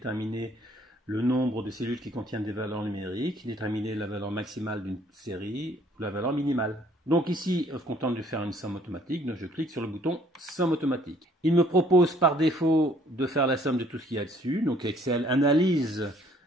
le nombre de cellules qui contiennent des valeurs numériques, déterminer la valeur maximale d'une série ou la valeur minimale. Donc ici, je suis content de faire une somme automatique, donc je clique sur le bouton somme automatique. Il me propose par défaut de faire la somme de tout ce qu'il y a dessus. Donc Excel analyse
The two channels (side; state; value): both; normal; correlation 0.61